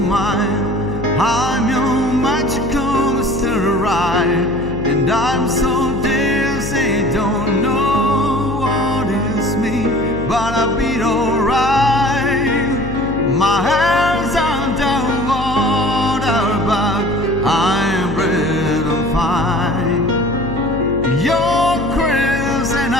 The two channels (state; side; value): noise; left; hum, 7 dB below the sound